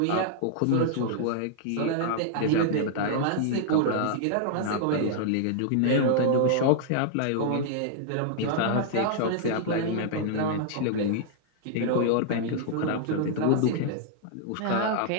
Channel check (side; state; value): both; different; correlation -0.01